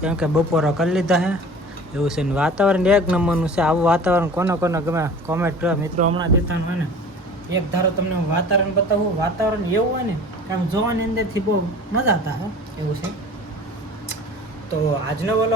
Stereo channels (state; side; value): normal; both; correlation 0.42